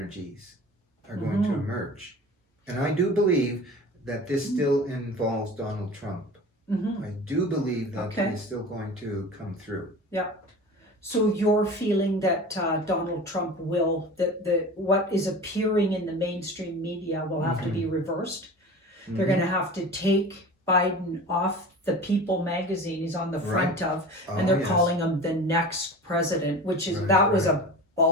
are going to emerge. And I do believe that this still involves Donald Trump. I do believe that he is still going to come through. So you're feeling that Donald Trump will, that what is appearing in the mainstream media will have to be reversed. They're going to have to take Biden off the People magazine he's on the front of, and they're calling him the next president, which is, was a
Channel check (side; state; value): both; normal; correlation 0.35